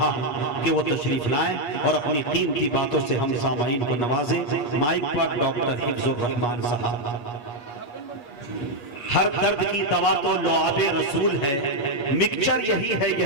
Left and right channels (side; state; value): right; late; 8.4 ms